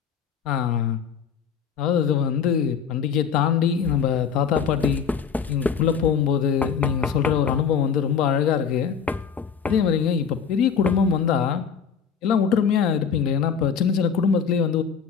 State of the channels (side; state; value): right; quieter; 6.8 dB